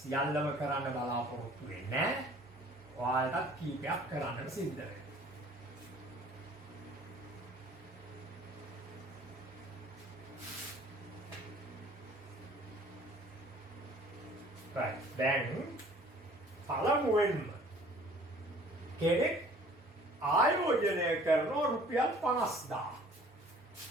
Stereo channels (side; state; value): both; normal; correlation 0.52